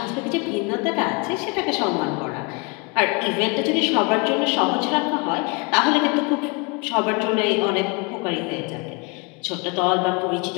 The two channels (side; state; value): right; quieter; 30.5 dB